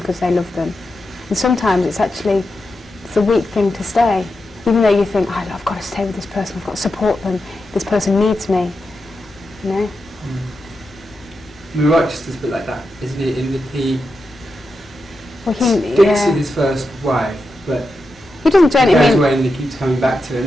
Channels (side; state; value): both; normal; correlation 0.88